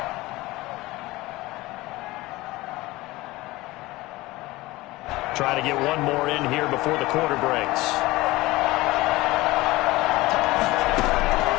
Try to get one more in here before the quarter breaks.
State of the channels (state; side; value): quieter; right; 19.7 dB